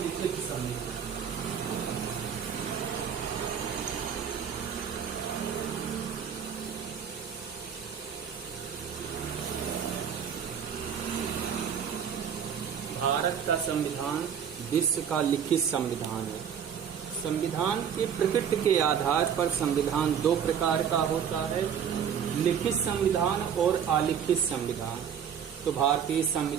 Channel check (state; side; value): quieter; left; 7.9 dB